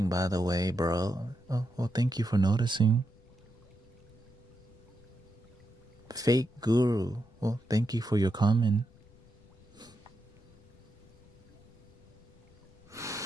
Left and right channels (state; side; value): noise; left; rumble, 27 dB below the sound